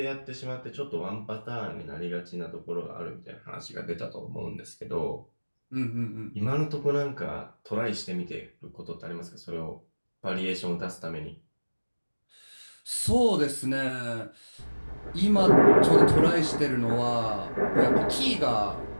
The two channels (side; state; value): both; inverted; correlation -1.00